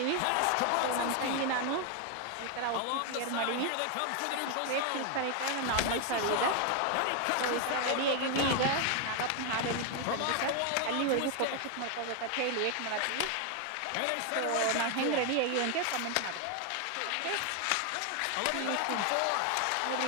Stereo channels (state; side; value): different; both; correlation 0.01